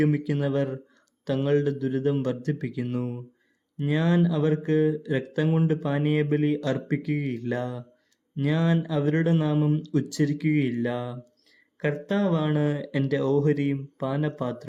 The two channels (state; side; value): identical; both; correlation 1.00